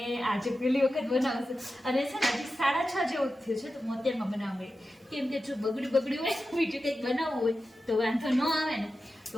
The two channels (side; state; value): both; normal; correlation 0.92